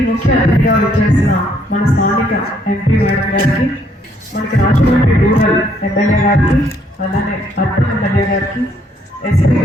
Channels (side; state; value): both; normal; correlation 0.68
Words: ముఖ్య అతిథిగా వచ్చేసిన మన స్థానిక ఎంపీ మేడం గారికి, మనకి రాజమండ్రి రూరల్ ఎమ్మెల్యే గారికి, అలానే అర్బన్ ఎమ్మెల్యే గారికి, ఎస్పీ